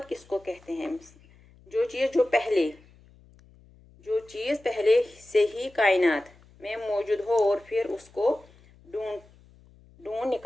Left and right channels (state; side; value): noise; left; hum, 27 dB below the sound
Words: किसको कहते हैं? जो चीज़ पहले से ही कायनात में मौजूद हो और फिर उसको ढूंढ